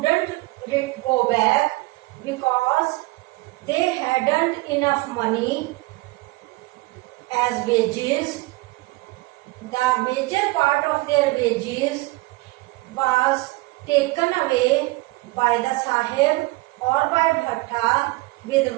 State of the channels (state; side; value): quieter; left; 22.5 dB